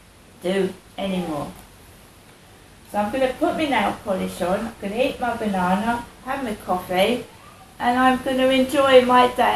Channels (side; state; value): both; identical; correlation 1.00